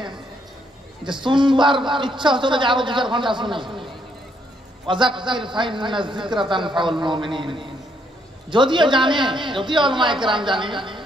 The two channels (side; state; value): both; normal; correlation 0.73